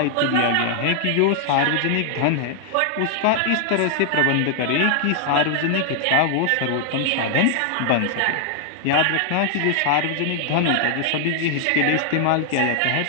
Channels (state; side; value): different; both; correlation 0.00